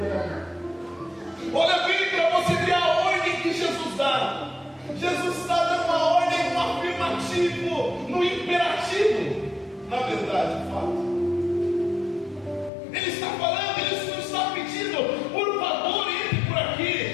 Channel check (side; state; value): right; drops out; at 12.7 s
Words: ela. Olha bem para você ver a ordem que Jesus dá. Jesus está dando uma ordem no afirmativo, no imperativo, na verdade, fato. Ele está falando, ele não está pedindo: por favor, entre por